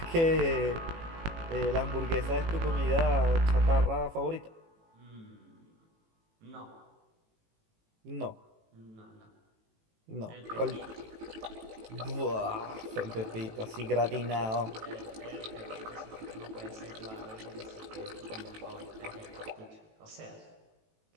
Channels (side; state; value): left; late; 18 ms